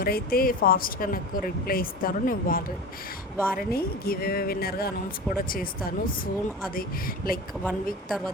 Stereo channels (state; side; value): normal; both; correlation 0.31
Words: ఫాస్ట్గా నాకు రిప్లై ఇస్తారో నేను వారిని గివ్ అవే విన్నర్గా అనౌన్స్ కూడా చేస్తాను సూన్. అది లైక్ 1 వీక్